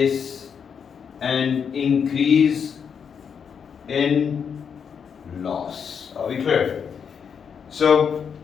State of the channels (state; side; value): quieter; right; 7.0 dB